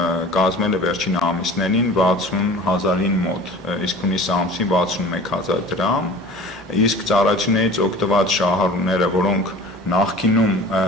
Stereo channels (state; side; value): normal; both; correlation 0.42